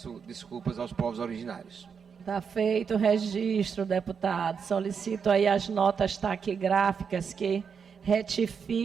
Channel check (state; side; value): quieter; left; 6.4 dB